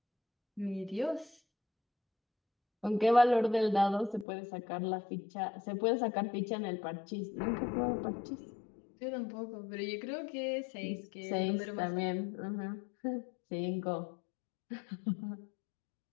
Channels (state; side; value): drops out; right; at 4.2 s